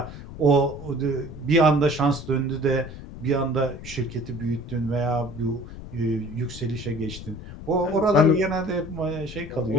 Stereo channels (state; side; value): noise; left; rumble, 13 dB below the sound